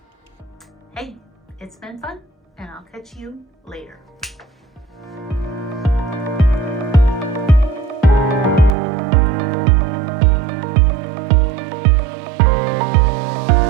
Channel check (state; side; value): drops out; left; at 8.7 s